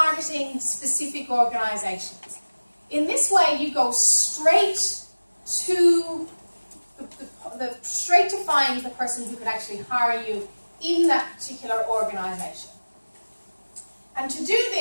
specific organizations? In this way, you go straight to straight to find the person who could actually hire you in that particular organization. And to do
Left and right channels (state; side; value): inverted; both; correlation -1.00